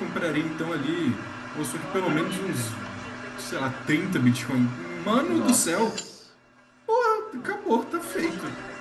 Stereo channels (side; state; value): both; identical; correlation 1.00